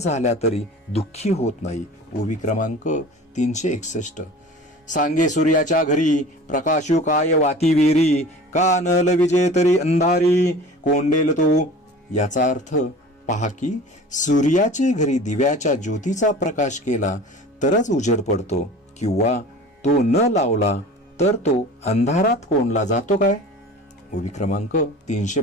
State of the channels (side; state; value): both; normal; correlation 0.40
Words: तरी दुःखी होत नाही. ओवी क्रमांक 361. सांगे सूर्याच्या घरी प्रकाशू काय वाती वेरी, का न लविजे तरी अंधारी कोंडेल तो. याचा अर्थ, पहा की सूर्याचे घरी दिव्याच्या ज्योतीचा प्रकाश केला तरच उजेड पडतो, किंवा तो न लावला तर तो अंधारात कोंडला जातो काय. ओवी क्रमांक